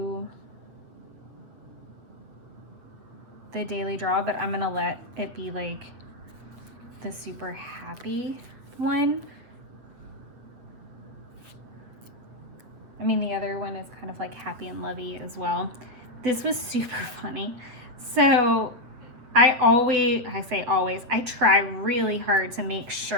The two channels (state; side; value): late; left; 8.3 ms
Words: the daily draw, but I'm gonna let it be like the super happy one. I mean, the other one is kind of like happy and lovey as well. This was super funny. So I try really hard to make